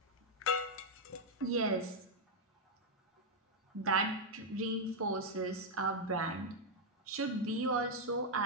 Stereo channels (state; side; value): normal; both; correlation -0.02